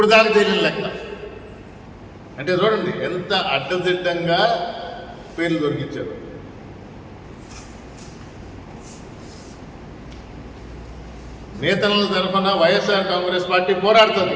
దాకా తెలియని లెక్క. అంటే చూడండి ఎంత అడ్డదిడ్డంగా పేర్లు దొరికించారు. నేతల తరఫున వైఎస్ఆర్ కాంగ్రెస్ పార్టీ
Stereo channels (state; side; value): identical; both; correlation 1.00